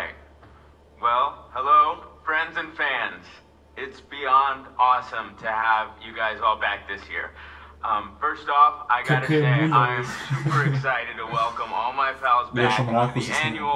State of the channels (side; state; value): both; identical; correlation 1.00